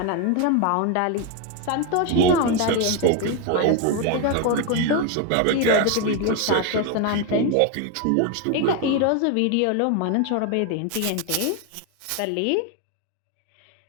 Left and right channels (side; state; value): both; different; correlation 0.01